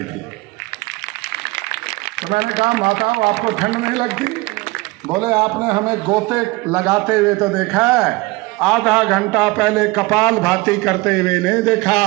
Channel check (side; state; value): left; quieter; 23.4 dB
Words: थी। तो मैंने कहा माताओं आपको ठंड नहीं लगती? बोले आपने हमें गोते लगाते हुए तो देखा है, आधा घंटा पहले कपाल भाती करते हुए नहीं देखा।